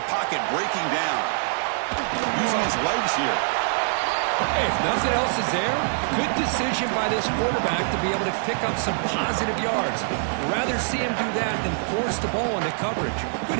pocket breaking down. Using his legs here. Hey, if nothing else is there, good decision by this quarterback to be able to pick up some positive yards. Rather see him do that than force the ball into coverage. Good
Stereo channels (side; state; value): left; silent; 62 dB below the other